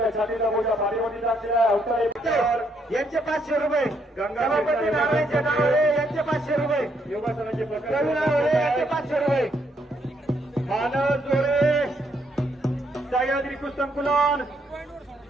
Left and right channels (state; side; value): normal; both; correlation 0.73